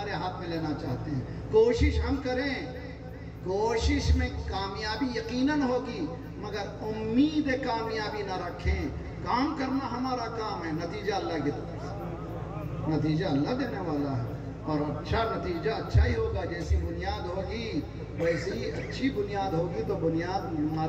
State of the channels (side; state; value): both; identical; correlation 1.00